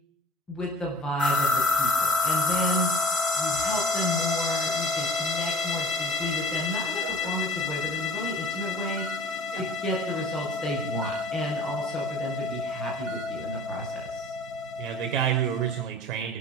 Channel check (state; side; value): normal; both; correlation 0.46